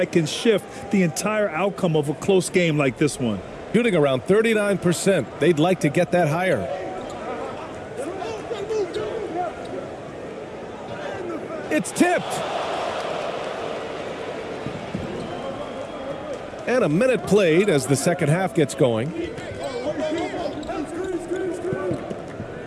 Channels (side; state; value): both; identical; correlation 1.00